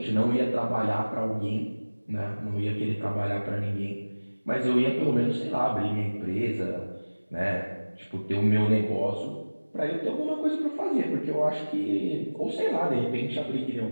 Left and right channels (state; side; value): inverted; both; correlation -1.00